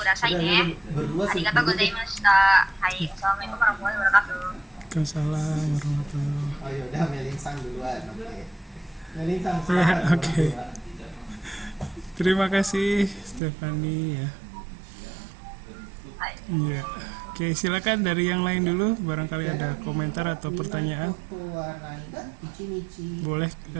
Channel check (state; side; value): drops out; left; at 13.4 s